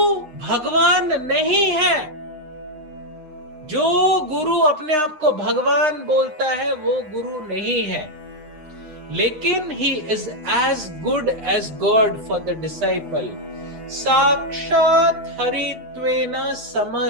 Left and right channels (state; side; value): late; left; 9.8 ms